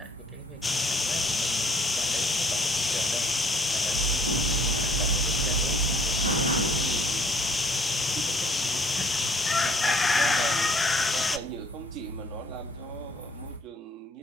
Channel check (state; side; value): normal; both; correlation 0.60